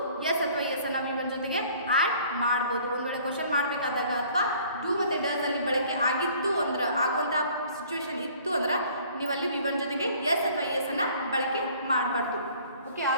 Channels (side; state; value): both; inverted; correlation -0.54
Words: ಎಸ್ ಅಥವಾ ಎಸ್ ಅನ್ನ V1 ಜೊತೆಗೆ ಆ್ಯಡ್ ಮಾಡ್ಬೋದು. ಒಂದು ವೇಳೆ ಕ್ವಶನ್ ಮಾಡಬೇಕಾದಾಗ ಅಥವಾ ಡೂ ಮತ್ತು ಡಸ್ ಅಲ್ಲಿ ಬಳಕೆ ಆಗಿತ್ತು ಅಂದ್ರೆ, ಆಗುವಂಥ ಸಿಚುವೇಶನ್ ಇತ್ತು ಅಂದ್ರೆ ನೀವು ಅಲ್ಲಿ V1 ಜೊತೆಗೆ ಎಸ್ ಅಥವಾ ಎಸ್ ಅನ್ನ ಬಳಕೆ ಮಾಡಬಾರ್ದು. Okay,